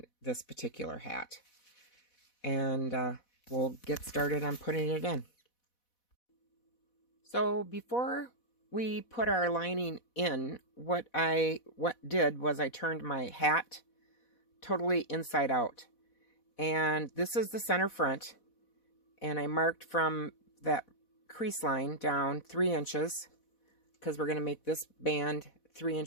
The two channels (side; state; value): right; late; 4.1 ms